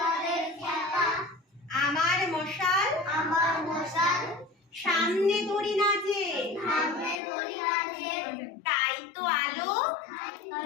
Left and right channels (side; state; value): right; drops out; at 7.2 s